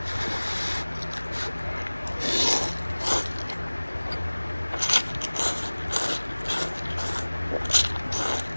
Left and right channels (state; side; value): inverted; both; correlation -1.00